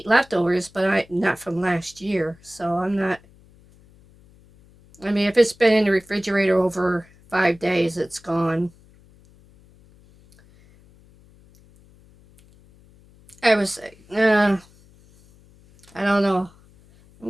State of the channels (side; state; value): left; noise; hum, 28 dB below the sound